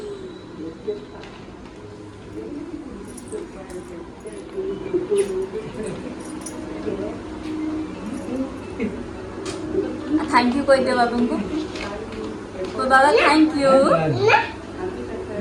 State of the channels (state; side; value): identical; both; correlation 1.00